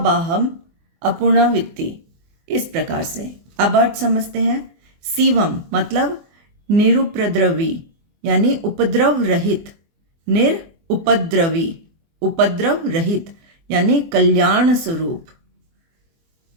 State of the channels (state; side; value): late; left; 24 ms